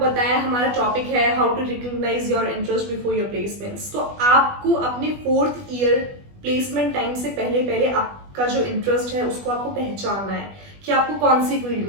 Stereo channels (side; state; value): left; late; 20 ms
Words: बताया, हमारा टॉपिक है how to recognise your interest before your placements. तो आपको अपने 4th ईयर प्लेसमेंट टाइम से पहले पहले आपका जो इंटरेस्ट है उसको आपको पहचानना है कि आपको कौन सी फील्ड